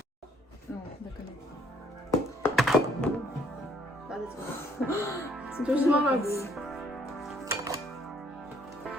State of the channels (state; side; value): normal; both; correlation 0.65